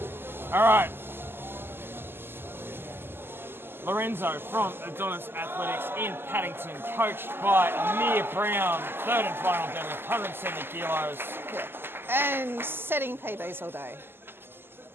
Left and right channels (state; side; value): late; left; 0.10 ms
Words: All right. Lorenzo from Adonis Athletics in Paddington, coached by Amir Brown, third and final deadlift, 170 kilos. Yeah. And setting PBs all day.